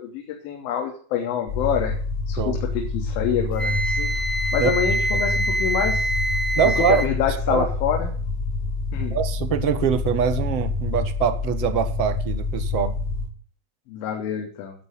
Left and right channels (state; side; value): late; right; 7.9 ms